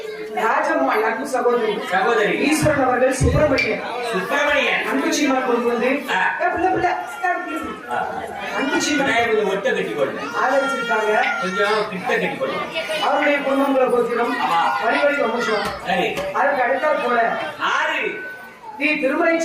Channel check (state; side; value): identical; both; correlation 1.00